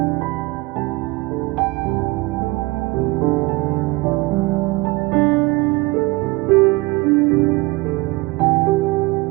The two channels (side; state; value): left; quieter; 23.4 dB